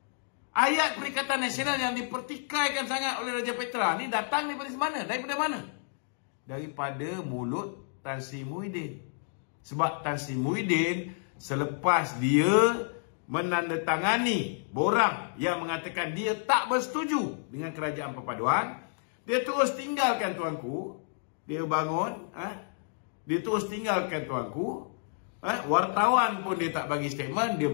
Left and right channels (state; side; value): silent; right; digital silence